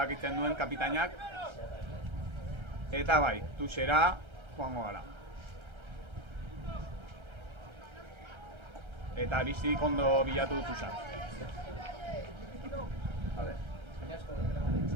duen kapitainak. Eta bai, Tuxera joango gara. Eta Aristik ondo bilatu du Tuxa. Vale.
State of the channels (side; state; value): left; late; 1.3 ms